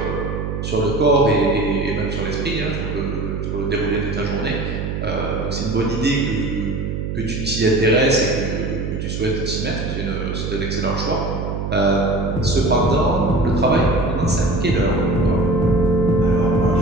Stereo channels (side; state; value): right; noise; hum, 4 dB below the sound